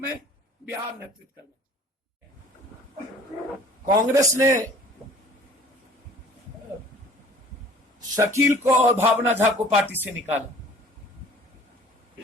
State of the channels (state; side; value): normal; both; correlation 0.49